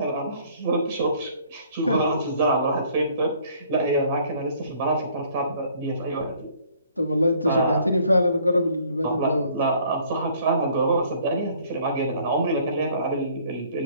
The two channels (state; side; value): inverted; both; correlation -0.59